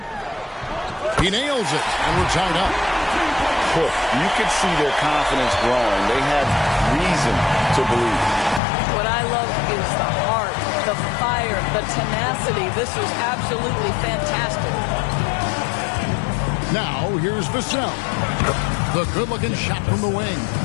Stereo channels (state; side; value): drops out; right; at 8.6 s